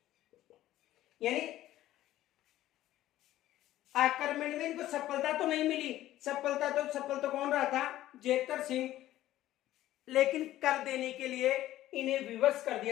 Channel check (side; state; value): right; quieter; 14.3 dB